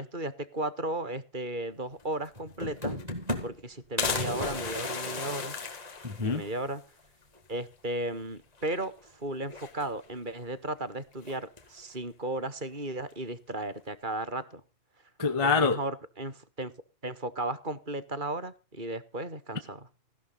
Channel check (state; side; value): late; left; 1.9 ms